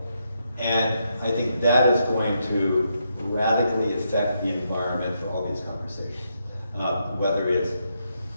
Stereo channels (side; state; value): both; inverted; correlation -0.80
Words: And I think that is going to radically affect the environment for all these conversations, whether it's